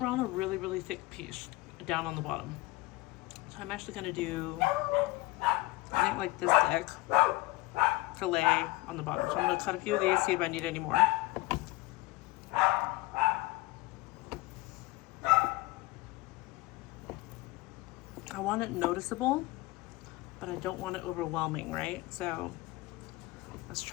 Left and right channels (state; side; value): quieter; right; 20.9 dB